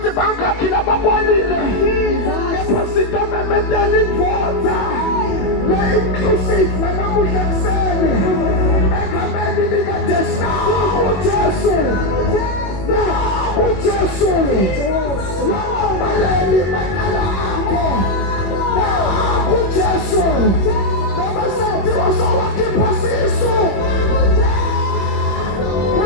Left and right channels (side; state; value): right; late; 21 ms